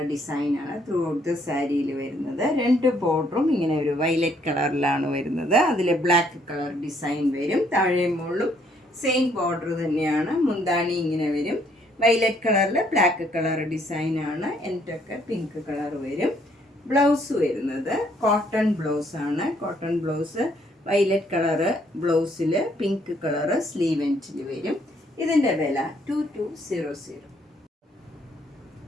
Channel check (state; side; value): normal; both; correlation 0.67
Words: ഡിസൈനാണ് ത്രൂ ഔട്ട് ദ സാരിയിൽ വരുന്നത്. രണ്ട് ബോർഡറും ഇങ്ങനെ ഒരു വയലറ്റ് കളറിലാണ് വരുന്നത്. അതിൽ ബ്ലാക്ക് കളർ ഡിസൈൻ വരും. താഴെ മുകളിലും സെയിം ബോർഡർ തന്നെയാണ്. മുന്താണി ഇങ്ങനെ വരും. വയലറ്റ് കളറിൽ ബ്ലാക്ക് കളർ ഡിസൈനാണ്. എന്നിട്ടൊക്കെ പിങ്ക് കളർ വരും. ബ്ലൗസ് വരുന്നത് കോട്ടൺ ബ്ലൗസ് ആണ്. കോട്ടൺ ബ്ലൗസ് വയലറ്റ് കളറ് ബ്ലൗസിൽ പിങ്ക് കളറ് സ്ലീവ് എൻഡിൽ വരും. ഇതിൻ്റെ വില 2200.